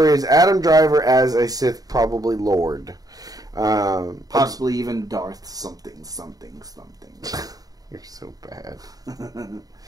is Adam Driver as a Sith, probably Lord. Possibly even Darth something. You're so bad.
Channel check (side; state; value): left; late; 0.18 ms